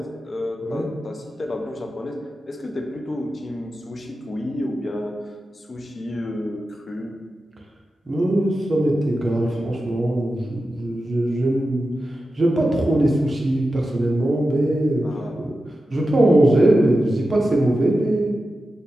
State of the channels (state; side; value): normal; both; correlation 0.92